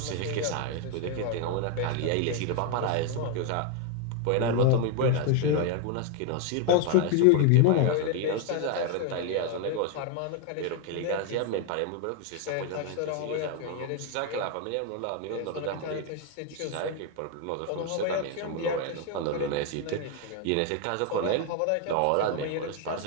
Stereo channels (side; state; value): both; different; correlation 0.01